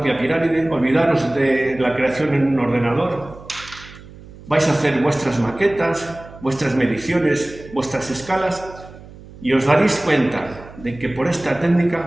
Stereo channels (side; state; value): right; noise; hum, 19 dB below the sound